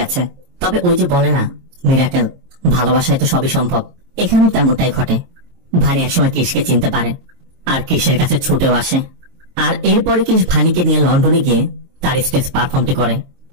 তবে ওই যে বলে না মিরাকেল, ভালোবাসায় তো সবই সম্ভব, এখানেও তেমনটাই ঘটে। ভানি একসময় ক্রিসকে চিনতে পারে আর ক্রিসের কাছে ছুটেও আসে। আর এরপরে ক্রিস ভানিকে নিয়ে লন্ডনে গিয়ে তার স্টেজ পারফর্মটি করে।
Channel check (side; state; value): left; late; 23 ms